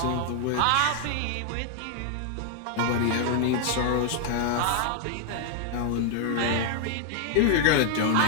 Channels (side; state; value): both; different; correlation 0.00